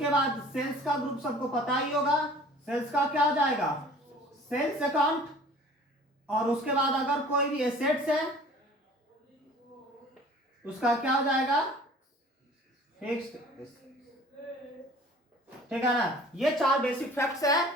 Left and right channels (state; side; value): normal; both; correlation 0.48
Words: बाद सेल्स का ग्रुप सबको पता ही होगा, सेल्स का क्या हो जाएगा, सेल्स अकाउंट। और उसके बाद अगर कोई भी एसेट्स है उसका क्या हो जाएगा, फिक्स्ड, ठीक है ना। ये 4 बेसिक फैक्ट्स